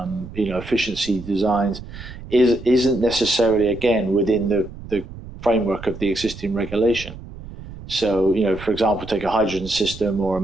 efficiency designs, isn't necessarily, again, within the framework of the existing regulation. So, for example, take a hydrogen system or a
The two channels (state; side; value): noise; right; rumble, 14 dB below the sound